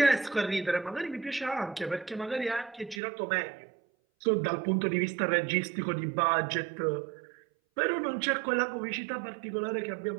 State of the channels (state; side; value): drops out; left; at 3.0 s